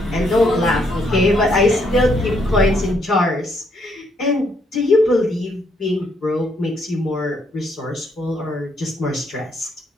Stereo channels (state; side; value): normal; both; correlation 0.73